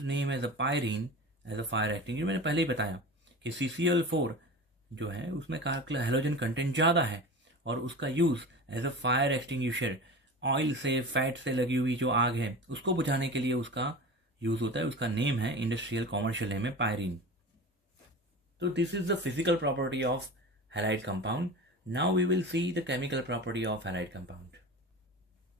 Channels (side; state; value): both; normal; correlation 0.32